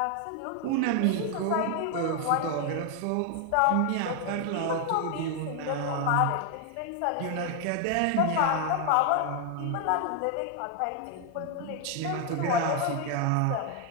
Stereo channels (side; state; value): both; different; correlation 0.00